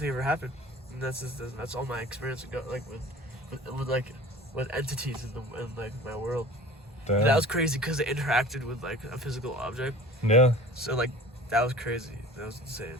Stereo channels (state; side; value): normal; both; correlation 0.43